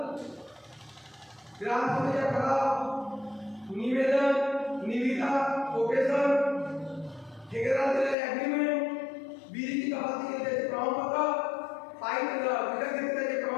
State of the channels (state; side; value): drops out; right; at 8.2 s